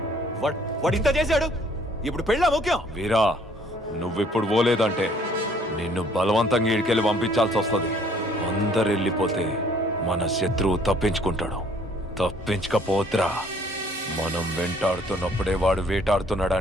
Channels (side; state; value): both; normal; correlation 0.60